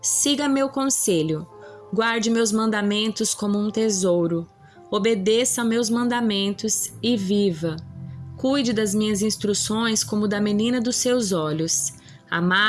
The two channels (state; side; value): identical; both; correlation 1.00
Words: siga meu conselho. Guarde meus mandamentos como um tesouro. Obedeça a meus mandamentos e viva. Cuide das minhas instruções como da menina dos seus olhos.